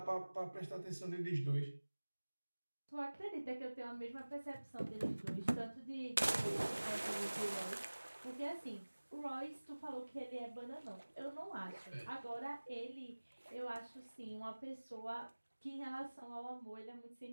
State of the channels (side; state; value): both; inverted; correlation -1.00